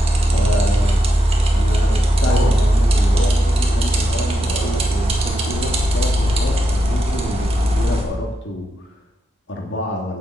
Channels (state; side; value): normal; both; correlation 0.85